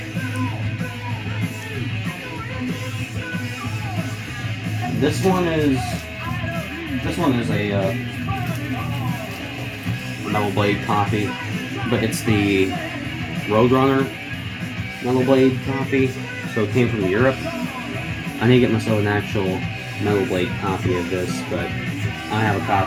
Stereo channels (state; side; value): identical; both; correlation 1.00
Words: This one is a Metal Blade copy, but it's the Roadrunner Metal Blade copy, so it came from Europe. I need to get myself an actual Metal Blade copy of this, but I have a